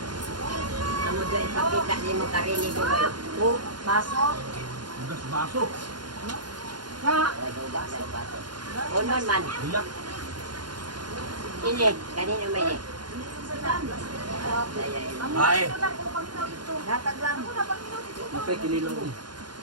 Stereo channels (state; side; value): late; left; 0.71 ms